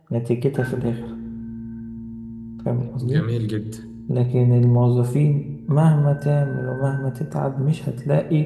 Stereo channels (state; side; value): identical; both; correlation 1.00